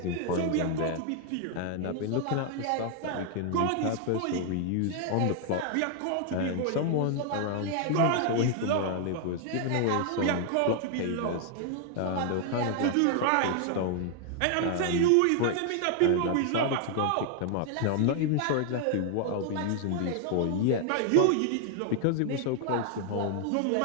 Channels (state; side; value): different; both; correlation 0.00